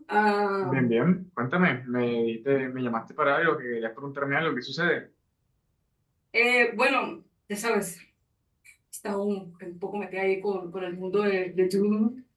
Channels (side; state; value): both; identical; correlation 1.00